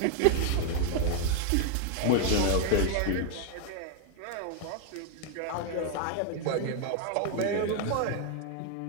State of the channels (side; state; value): both; different; correlation 0.00